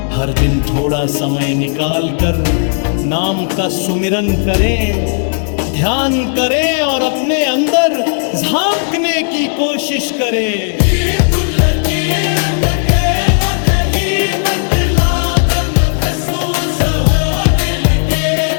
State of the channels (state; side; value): silent; right; digital silence